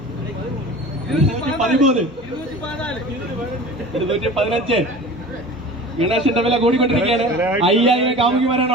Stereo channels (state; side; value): normal; both; correlation 0.38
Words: 215. ഗണേശന്റെ വില കൂടിക്കൊണ്ടിരിക്കുകയാണ്. 5000